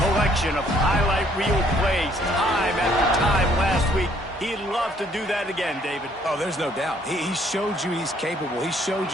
collection of highlight reel plays time after time last week. He'd love to do that again, David. Oh, there's no doubt. He showed you he's capable. He showed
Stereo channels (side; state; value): both; normal; correlation 0.64